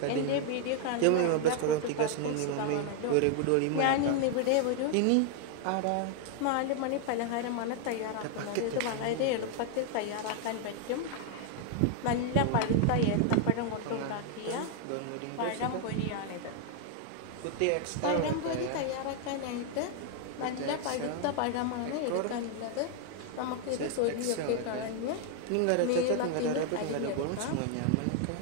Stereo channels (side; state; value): both; different; correlation 0.00